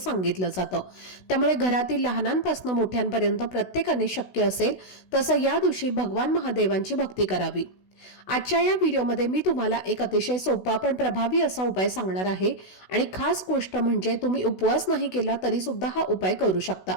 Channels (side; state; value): right; late; 16 ms